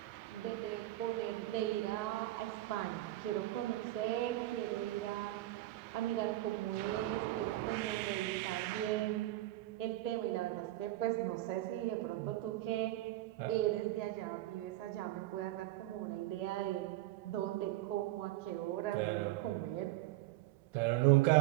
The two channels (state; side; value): quieter; left; 16.3 dB